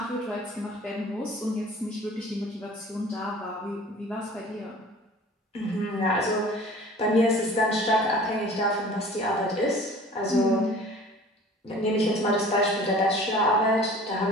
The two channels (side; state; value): both; normal; correlation 0.45